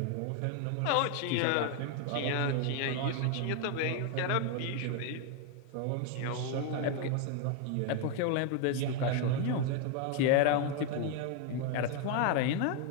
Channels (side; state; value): both; different; correlation 0.01